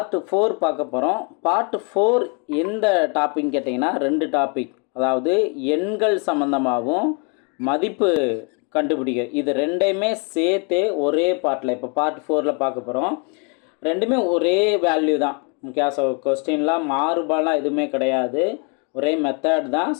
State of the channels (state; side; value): quieter; right; 36.0 dB